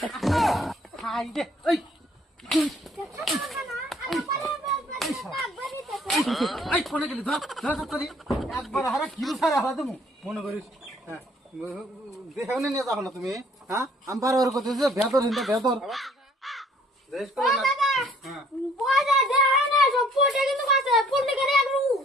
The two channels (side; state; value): both; normal; correlation 0.59